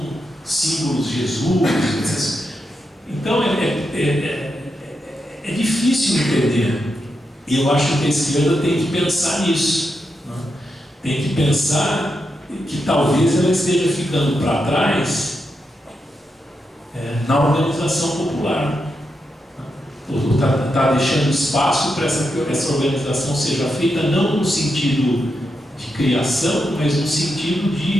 símbolos de Jesus. Então é difícil entender. E eu acho que a esquerda tem que pensar nisso, né? Tem que pensar que talvez ela esteja ficando para trás na organização popular. Está deixando espaço para essa organização seja feita não no sentido de criação, mas no sentido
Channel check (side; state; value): both; normal; correlation 0.85